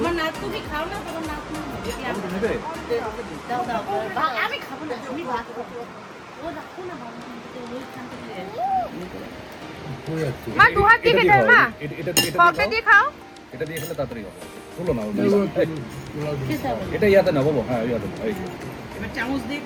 নাচ তুমি খাও না, তোমার নাচ নেবে? দাও দাও আমি খাবো না, আমি ভাত খাবো। ও রাখো না বাবা, ওইখান থেকে মা দু হাত দিয়ে খেতে মা, পকেটে দিয়ে খাও। এটা দিয়ে খেলে তাড়াতাড়ি হবে। তুলো না এটা ইয়াতে না বাবু। হ্যাঁ ইয়াতে এবার চামচ দিয়ে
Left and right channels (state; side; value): identical; both; correlation 1.00